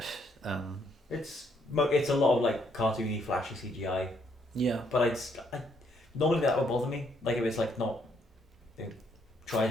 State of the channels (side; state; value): both; normal; correlation 0.71